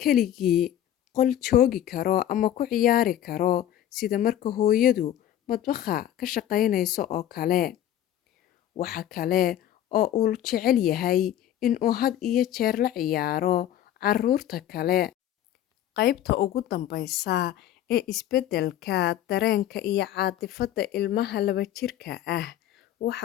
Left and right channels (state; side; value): quieter; right; 11.7 dB